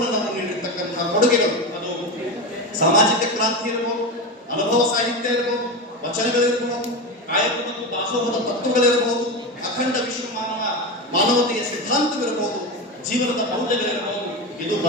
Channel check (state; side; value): normal; both; correlation 0.19